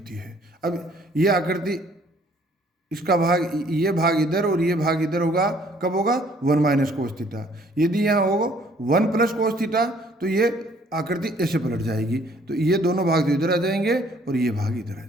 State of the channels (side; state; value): both; normal; correlation 0.60